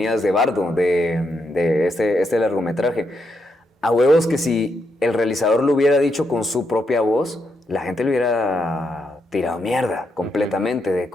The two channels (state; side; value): normal; both; correlation 0.80